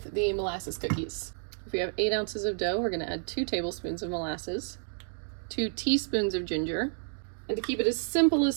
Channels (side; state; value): left; silent; 57 dB below the other